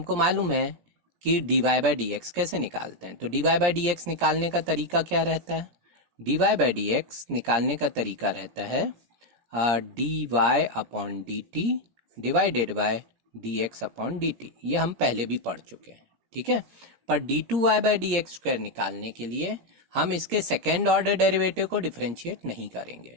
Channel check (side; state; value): left; late; 17 ms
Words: मालूम है कि d Y by D x कैसे निकालते हैं। तो D Y by D x निकालने का तरीका क्या रहता है, d Y by D x निकालने का तरीका रहता है d y upon d t divided by d x upon d t. ये हम पहले भी पढ़ चुके हैं, ठीक है। पर d two y by D x square निकालने के लिए हम इसके सेकेंड ऑर्डर डेरिवेटिव को डिफरेंशिएट नहीं करेंगे,